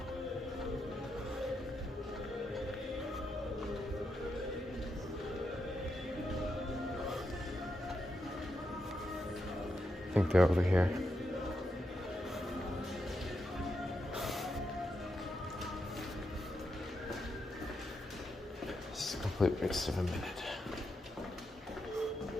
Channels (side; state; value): both; normal; correlation 0.84